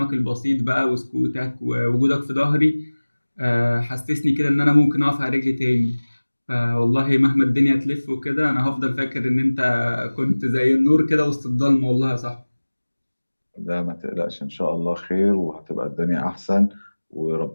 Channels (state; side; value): inverted; both; correlation -1.00